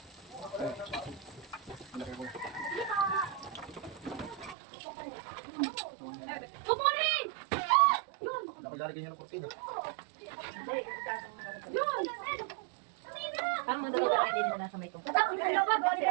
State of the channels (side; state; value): left; drops out; at 4.5 s